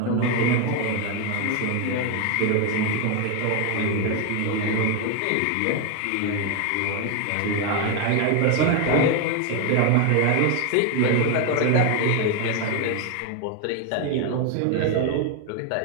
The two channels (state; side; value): different; both; correlation 0.01